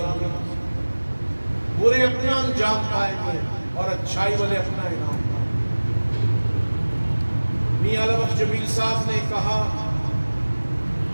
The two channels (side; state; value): both; inverted; correlation -1.00